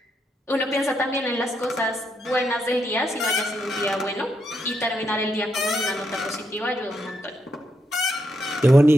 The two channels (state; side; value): normal; both; correlation 0.80